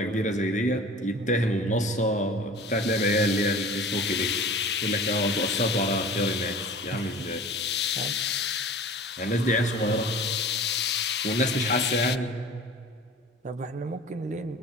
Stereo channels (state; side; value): normal; both; correlation 0.41